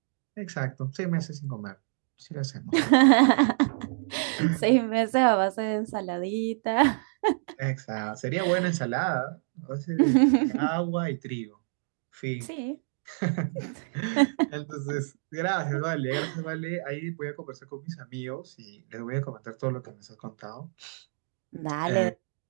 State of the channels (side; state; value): left; silent; digital silence